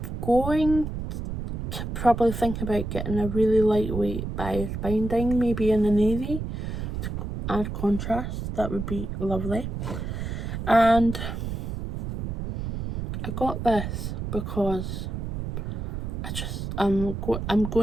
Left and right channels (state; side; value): noise; right; rumble, 4 dB below the sound